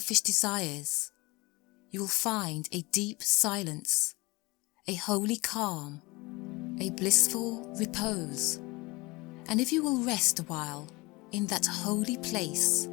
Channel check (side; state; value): right; quieter; 23.6 dB